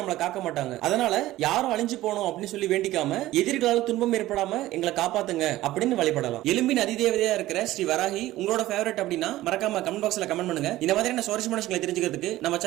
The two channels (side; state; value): left; quieter; 16.0 dB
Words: காக்க மாட்டாங்க. அதனால யாரும் அழிஞ்சு போகணும் அப்படின்னு சொல்லி வேண்டிக்காம எதிரிகளால் துன்பம் ஏற்படாம எங்களை காப்பாத்துங்க அப்படின்னு வழிபடலாம். எலும்பின் அதிதேவதையா இருக்கிற ஸ்ரீ வராகி உங்களோட ஃபேவரட் அப்படின்னா மறக்காம கமெண்ட் பாக்ஸ்ல கமெண்ட் பண்ணுங்க. இந்த மாதிரியான சுவாரஸ்யமான விஷயங்களை தெரிஞ்சுக்கிறதுக்கு நம்ம